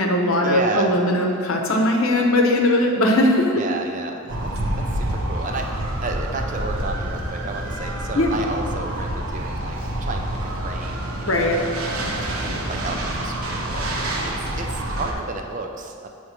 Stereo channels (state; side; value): normal; both; correlation 0.30